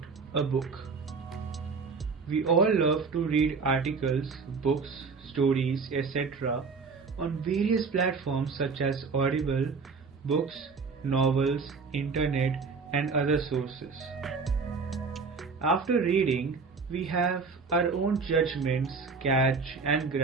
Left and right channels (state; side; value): quieter; left; 4.8 dB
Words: a book. We all love to read articles, books, stories, etc. on various platforms such as Audible, books, novels, internet and other sources. After reading, we have our own judgments, catch and